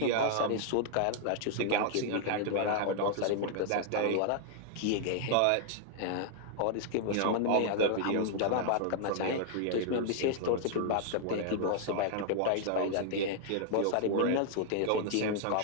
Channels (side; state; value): both; different; correlation -0.01